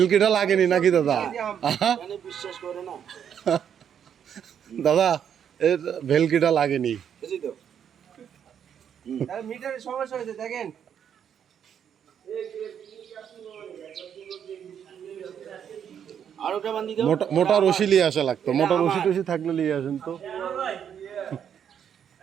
লাগেনি নাকি দাদা? মানে বিশ্বাস করে না দাদা, এর ভেলকিটা লাগেনি। বুঝি তো তাহলে মিটারের সমস্যা হয়েছে দেখেন। আর ওটা বান্ধি দাও মোটা রশি নিয়ে আসা লাগতো, মোটা রশি টশি থাকলে নিয়ে আসেন তো।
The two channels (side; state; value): left; quieter; 8.5 dB